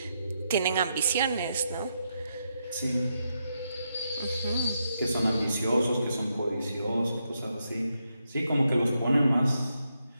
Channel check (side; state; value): both; inverted; correlation -0.82